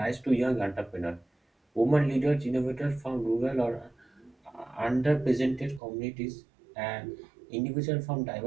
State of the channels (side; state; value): left; drops out; at 5.8 s